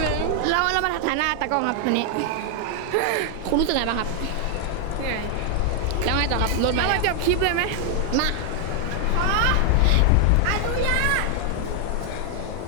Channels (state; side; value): different; both; correlation 0.00